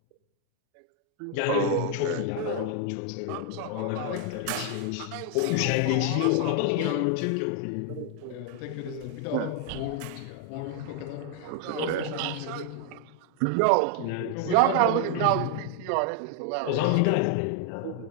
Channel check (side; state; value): both; different; correlation 0.00